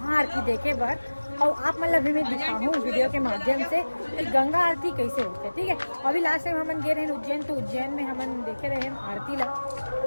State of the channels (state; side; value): inverted; both; correlation -1.00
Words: देखे बर, और आप मतलब भी मैं दिखाऊँ वीडियो के माध्यम से कि गंगा आरती कैसे होते है। ठीक है, अभी लास्ट टाइम हम गए रहे उज्जैन, तो उज्जैन में हम देखे रहे हम आरती ला,